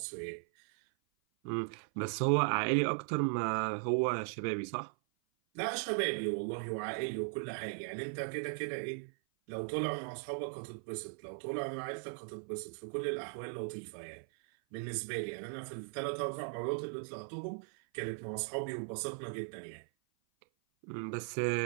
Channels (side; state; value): left; silent; 52 dB below the other